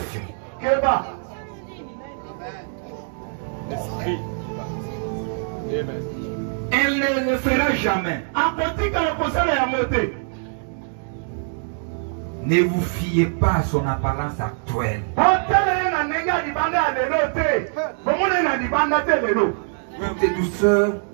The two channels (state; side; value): silent; left; digital silence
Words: Elle ne le fera jamais. Ne vous fiez pas à son apparence actuelle. De douceur